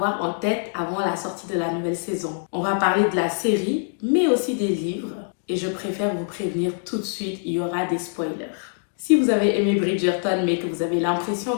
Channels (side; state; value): right; silent; digital silence